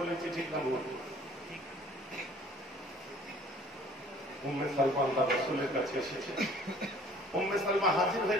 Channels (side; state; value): both; normal; correlation 0.53